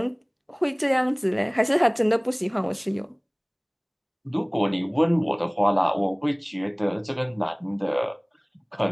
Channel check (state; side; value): identical; both; correlation 1.00